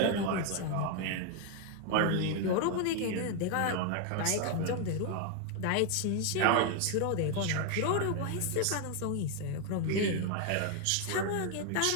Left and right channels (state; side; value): different; both; correlation 0.01